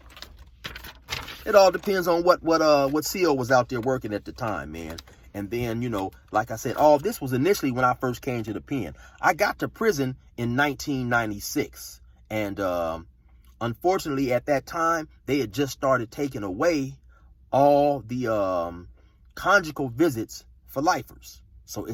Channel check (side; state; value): both; identical; correlation 1.00